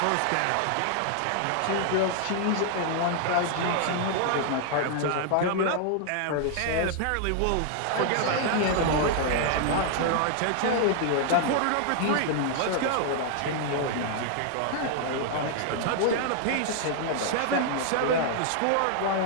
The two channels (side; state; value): both; different; correlation 0.00